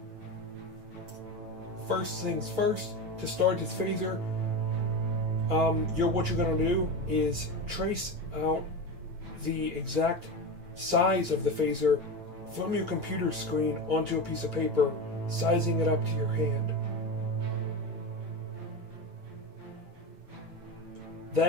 First things first, to start this phaser, what you're going to do is trace out the exact size of the phaser from your computer screen onto a piece of paper, sizing it up to your hand.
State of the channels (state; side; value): late; left; 9.1 ms